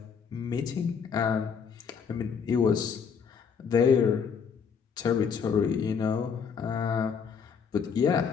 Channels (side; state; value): right; quieter; 6.5 dB